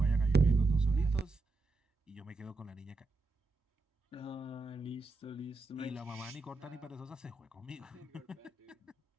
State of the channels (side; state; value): left; quieter; 3.6 dB